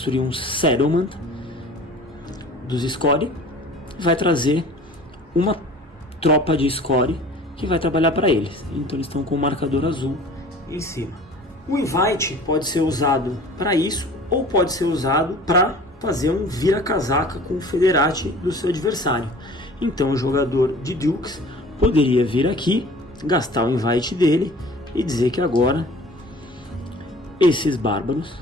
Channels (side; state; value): both; normal; correlation 0.45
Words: um settlement dos Scori, vai trazer uma tropa de Scori que vai trabalhar para eles. Então eles estão com o marcador azul em cima. O invite pode ser usado para isso ou pode ser usado para fazer um vira-casaca com o Federati do seu adversário. Então o jogador de Dukes poderia vir aqui, gastar o invite dele e dizer que agora esses bárbaros